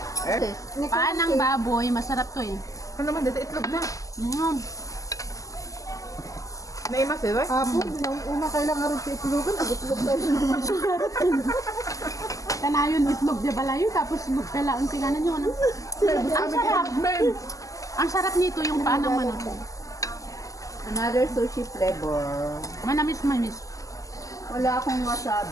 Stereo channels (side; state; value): right; late; 0.16 ms